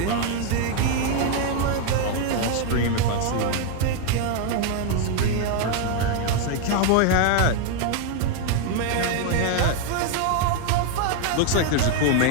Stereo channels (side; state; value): both; different; correlation 0.00